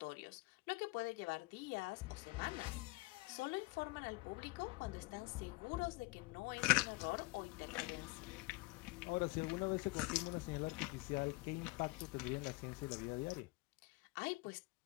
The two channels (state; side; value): quieter; right; 24.4 dB